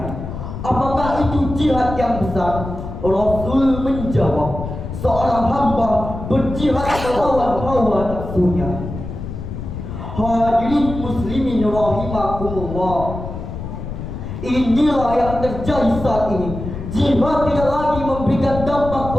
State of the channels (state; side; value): noise; left; rumble, 8 dB below the sound